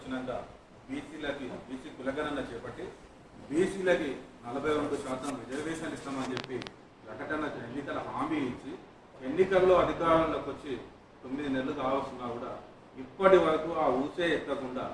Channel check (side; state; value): both; identical; correlation 1.00